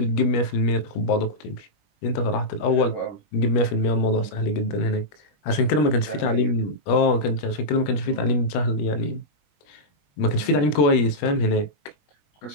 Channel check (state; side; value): late; right; 21 ms